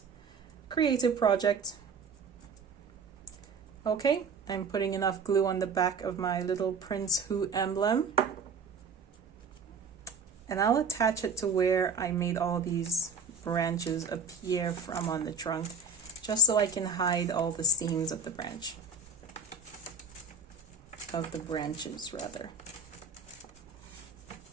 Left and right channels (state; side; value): quieter; left; 4.6 dB